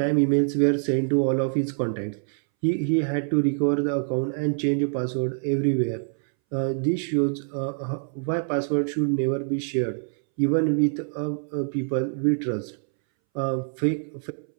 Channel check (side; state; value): left; silent; 62 dB below the other